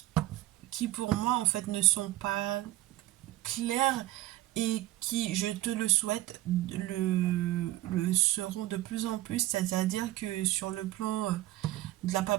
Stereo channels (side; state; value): left; quieter; 16.5 dB